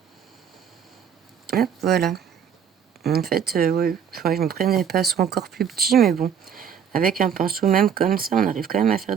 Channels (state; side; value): quieter; left; 7.9 dB